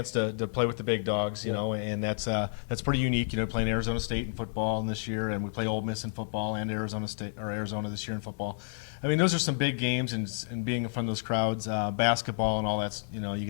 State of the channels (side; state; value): right; silent; digital silence